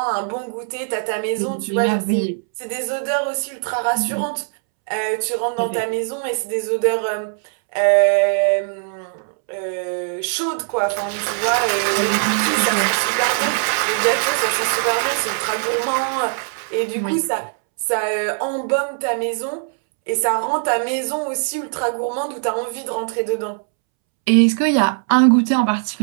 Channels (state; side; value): silent; left; 65 dB below the other